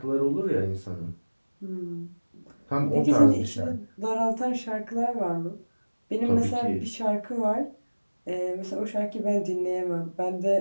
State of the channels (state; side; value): inverted; both; correlation -1.00